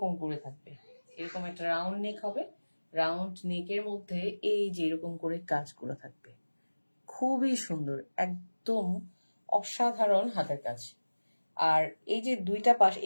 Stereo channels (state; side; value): inverted; both; correlation -1.00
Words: করে থাকবে, এরকম একটা রাউন্ড নেক হবে। রাউন্ড নেকের মধ্যে এই যে এরকম করে কাজগুলো থাকবে, খুবই সুন্দর, একদম অসাধারণ হাতের কাজ। আর এই যে দুইটা পাশ